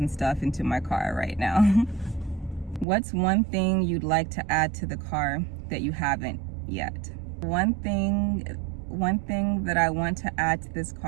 stuff into my car right now. What's one thing you'd like to add to the car that you haven't yet? One thing that I want to add to this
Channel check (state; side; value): drops out; left; at 2.9 s